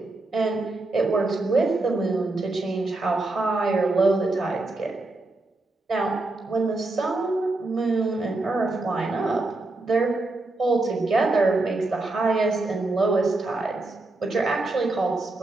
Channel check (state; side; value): quieter; left; 3.0 dB